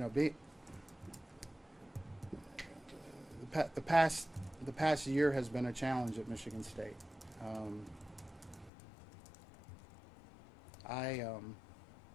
the past year has been a challenge at Michigan State. Um, I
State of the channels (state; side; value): drops out; right; at 8.7 s